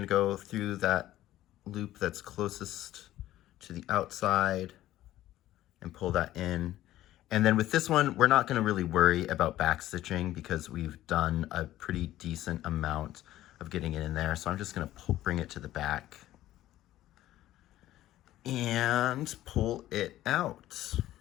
go through that loop that's closest to the outside and pull that in. And then with this one, we're not gonna really worry about back stitching because we've done a pretty decent amount of getting it in there. So I'm just gonna bring it to the back and pull it out.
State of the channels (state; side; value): quieter; right; 14.3 dB